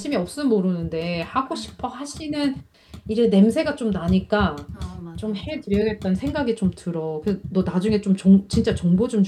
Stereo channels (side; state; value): both; identical; correlation 1.00